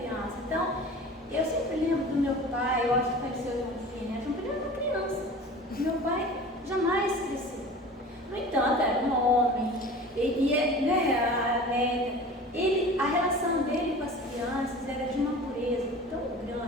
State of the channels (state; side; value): normal; both; correlation 0.39